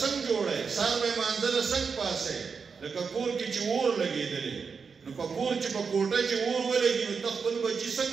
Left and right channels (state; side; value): quieter; left; 5.6 dB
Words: جوړی؟ سهار به یې مانځه له څنګه پاسئ؟ لکه کور کې چې اور لګېدلی نو په کور چې په کوټه چې اور ولګي نو ته خپل بچي